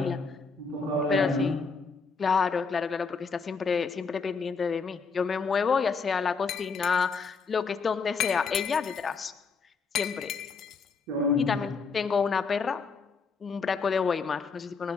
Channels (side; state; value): right; quieter; 5.0 dB